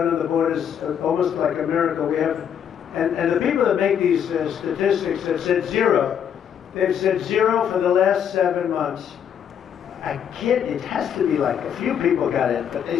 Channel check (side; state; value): right; quieter; 8.5 dB